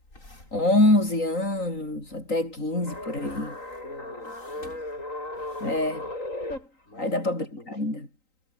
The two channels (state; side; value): late; right; 3.9 ms